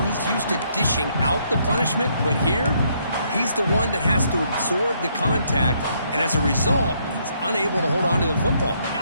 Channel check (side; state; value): both; inverted; correlation -0.71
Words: he's used to dishing out the punishment, but here, he's the one that has to absorb the contact, and as a result, he's unable to hold on to the football.